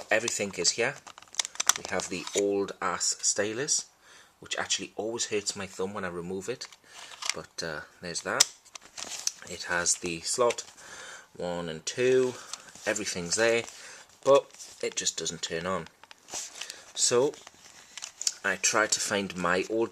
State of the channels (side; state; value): both; identical; correlation 1.00